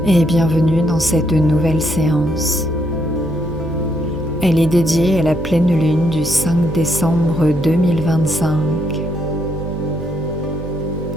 et bienvenue dans cette nouvelle séance. Elle est dédiée à la pleine lune du 5 décembre 2025.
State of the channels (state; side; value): noise; right; hum, 11 dB below the sound